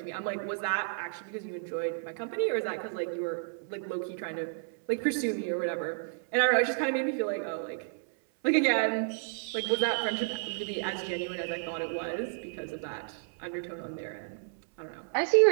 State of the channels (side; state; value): left; silent; 57 dB below the other